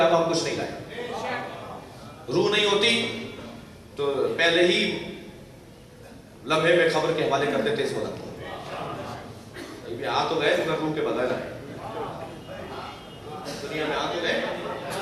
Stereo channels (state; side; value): identical; both; correlation 1.00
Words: ہم کچھ نہیں لائے. روح نہیں ہوتی تو پہلے ہی لمحے میں خبر کے حوالے کر دیتے اس وقت. آ تو گئے مگر روح کے بغیر آئے. دنیا میں آ تو گئے